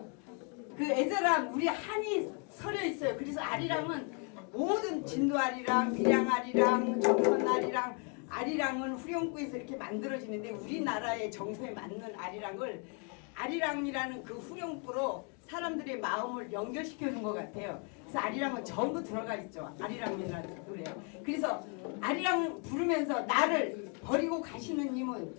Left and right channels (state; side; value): quieter; right; 37.6 dB